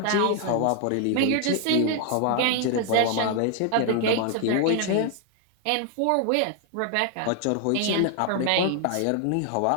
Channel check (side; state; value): both; different; correlation 0.00